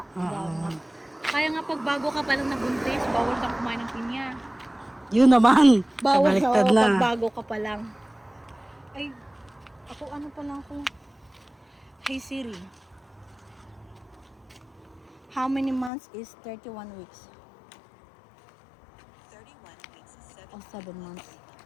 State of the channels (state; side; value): drops out; right; at 15.9 s